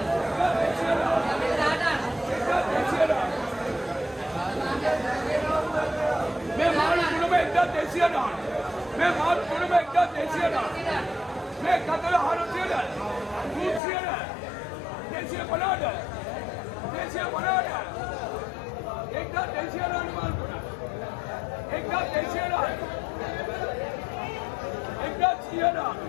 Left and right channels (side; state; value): right; drops out; at 13.8 s